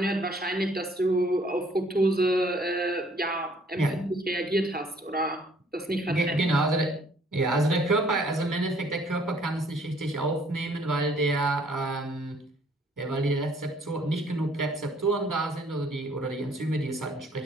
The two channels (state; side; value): normal; both; correlation 0.60